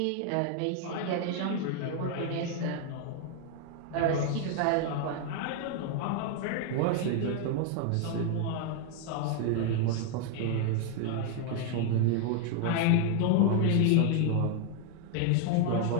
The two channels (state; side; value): different; both; correlation 0.01